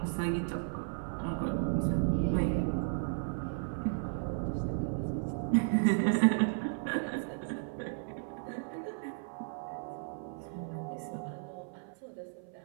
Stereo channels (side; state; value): left; silent; 55 dB below the other